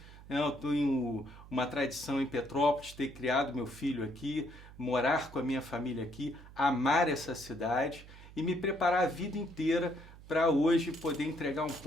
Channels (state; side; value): noise; right; hum, 18 dB below the sound